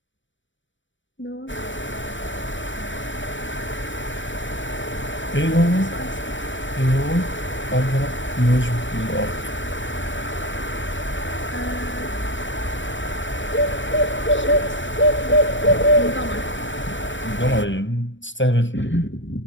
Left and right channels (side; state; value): right; late; 0.55 ms